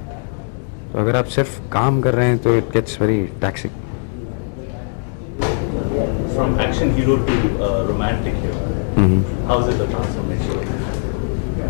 तो अगर आप सिर्फ काम कर रहे हैं तो it gets very taxing. From action hero to romantic hero. How is it the transformation?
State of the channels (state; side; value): silent; right; 61 dB below the other